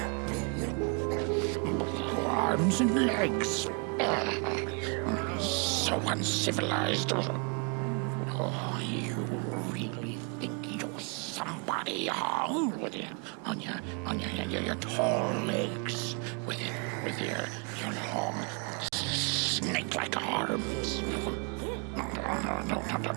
Arms and legs. So uncivilized. Oh, you really think you're somebody, huh? On your tall legs, with your long snake-like arms. No,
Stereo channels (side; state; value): left; quieter; 36.2 dB